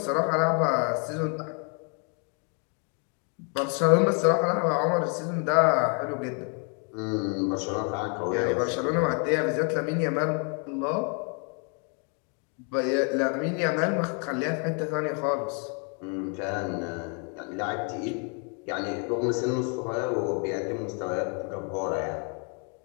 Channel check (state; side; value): quieter; right; 38.3 dB